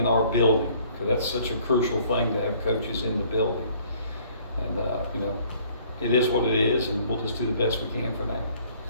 our building, because that's such a crucial thing to have coaches in the building. And it is what it is, and we'll just do the best we can for now.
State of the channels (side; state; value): both; inverted; correlation -0.58